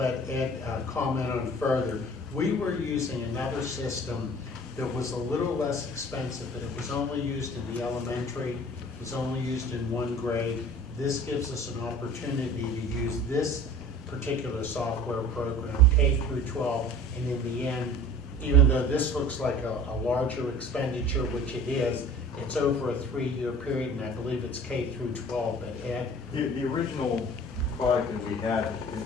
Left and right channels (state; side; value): normal; both; correlation 0.44